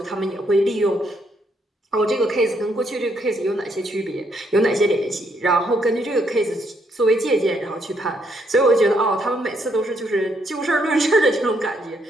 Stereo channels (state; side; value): normal; both; correlation 0.73